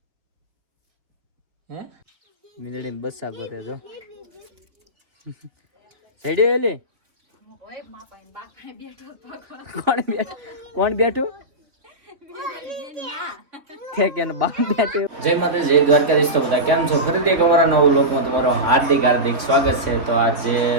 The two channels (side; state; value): left; late; 3.7 ms